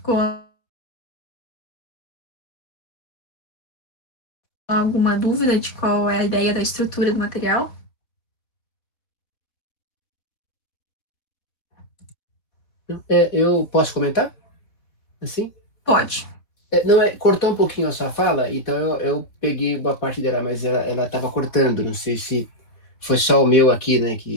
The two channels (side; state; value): right; late; 4.0 ms